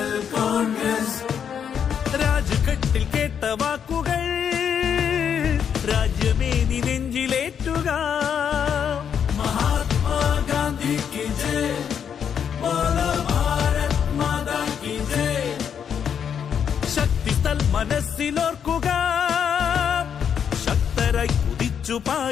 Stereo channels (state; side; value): quieter; right; 7.9 dB